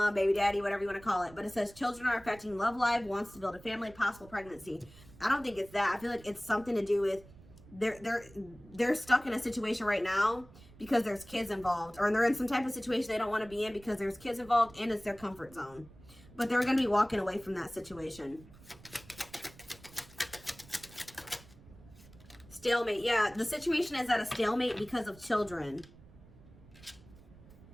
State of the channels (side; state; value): right; noise; rumble, 22 dB below the sound